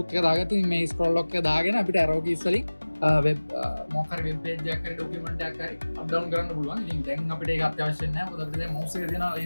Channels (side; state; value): both; inverted; correlation -1.00